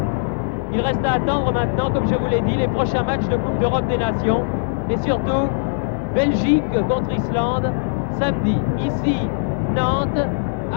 Il reste à attendre maintenant, comme je vous l'ai dit, les prochains matchs de Coupe d'Europe des Nations. Et surtout, Belgique contre Islande, samedi. Ici, Nantes,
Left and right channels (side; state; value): right; silent; digital silence